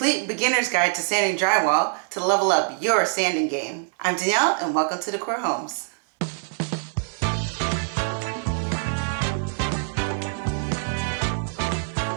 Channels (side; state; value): left; silent; 62 dB below the other